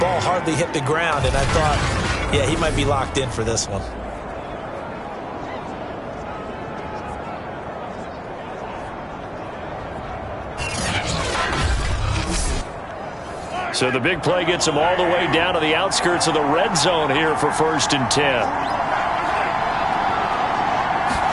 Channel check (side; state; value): both; identical; correlation 1.00